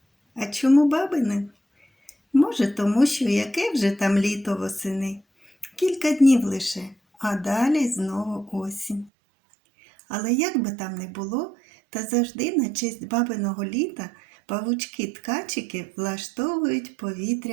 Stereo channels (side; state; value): left; drops out; at 9.1 s